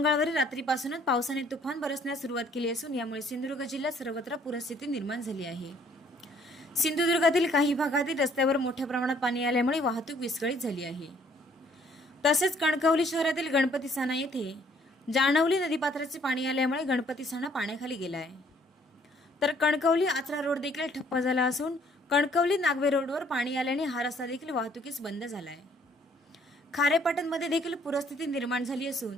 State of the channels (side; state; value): both; normal; correlation 0.62